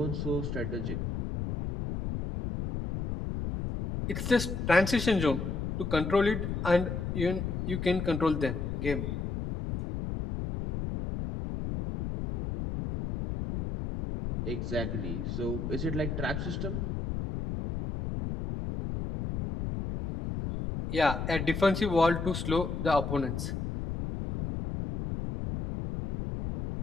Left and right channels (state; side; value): noise; left; rumble, 3 dB below the sound